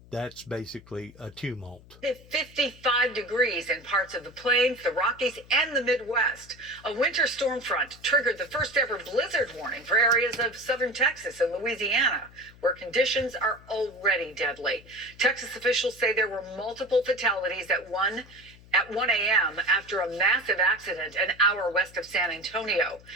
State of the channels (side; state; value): left; noise; hum, 23 dB below the sound